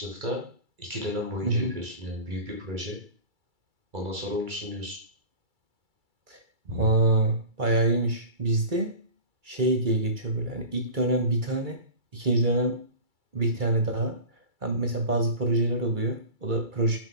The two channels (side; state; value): left; late; 2.3 ms